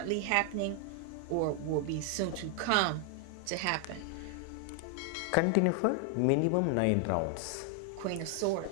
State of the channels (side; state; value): both; different; correlation 0.00